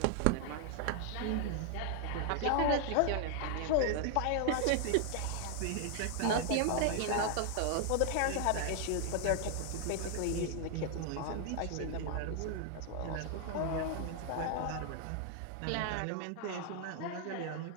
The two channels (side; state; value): both; different; correlation 0.00